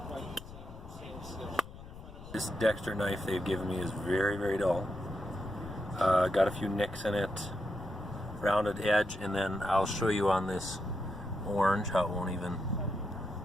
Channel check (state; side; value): noise; left; rumble, 15 dB below the sound